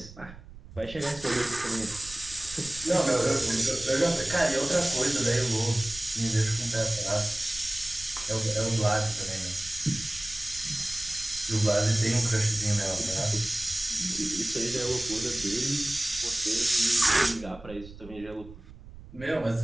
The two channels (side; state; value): right; noise; rumble, 17 dB below the sound